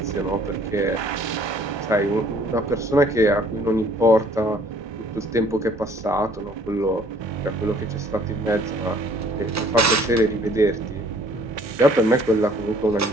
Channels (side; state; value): both; normal; correlation 0.58